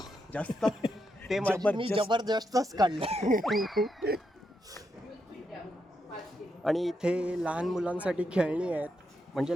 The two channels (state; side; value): normal; both; correlation 0.82